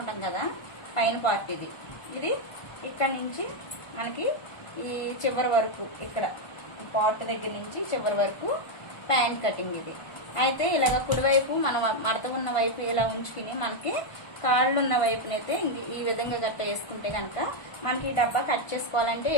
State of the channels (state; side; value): late; right; 1.5 ms